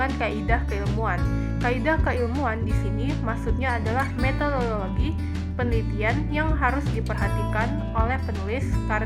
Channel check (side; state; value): both; identical; correlation 1.00